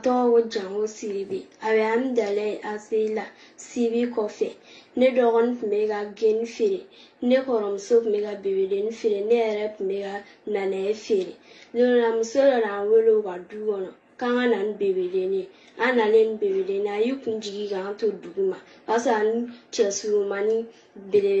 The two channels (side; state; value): both; identical; correlation 1.00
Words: ko Jango Sidibe a bɛ an dala a se la Sibi kɔfɛ ne dɔgɔnin tun bɛ ka geni feere ne kɔrɔmuso tun bɛ ka bebedenin feere ne yɛrɛ tun bɛ ka nanaye feere muso dɔ n'an wele u ka du kɔnɔ k'an ka na ni bebedenin an nalen ni bebedenin a y'i kun jigi k'an to dugu ma o y'a sɔrɔ ani cɛ surumani